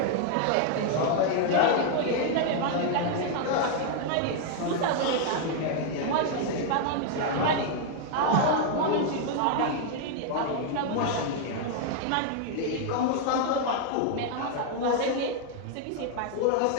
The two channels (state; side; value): different; both; correlation 0.00